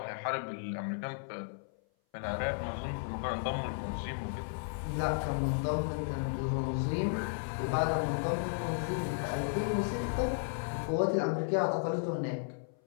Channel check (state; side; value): silent; right; 55 dB below the other